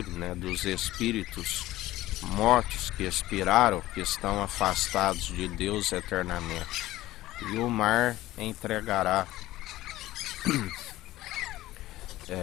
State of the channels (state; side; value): quieter; right; 16.2 dB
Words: né, dos espíritos mortos que expiraram, que estão afastados de Deus eternamente. E o mar entregará